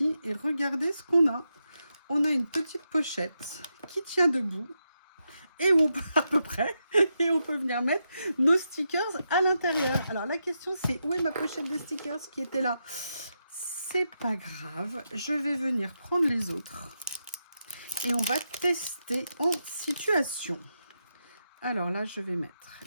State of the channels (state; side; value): inverted; both; correlation -0.85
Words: Et regardez ce qu'on a. On a une petite pochette qui tient debout. Et où on peut, à peu près, et on peut venir mettre nos stickers à l'intérieur. Alors la question c'est, où est ma pochette de stickers qui était là? C'est pas grave. Je vais venir prendre les autres. Et on va tester en situation. Alors là, je vais mettre